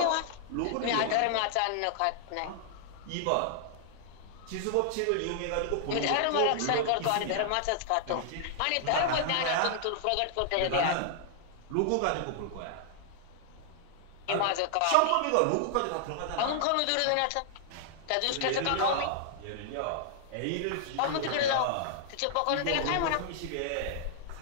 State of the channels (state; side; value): different; both; correlation -0.01